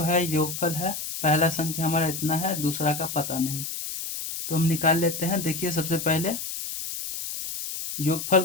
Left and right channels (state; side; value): noise; left; hiss, 6 dB below the sound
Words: है योगफल है, पहला संख्या हमारा इतना है, दूसरा का पता नहीं, तो हम निकाल लेते हैं। देखिए, सबसे पहले योगफल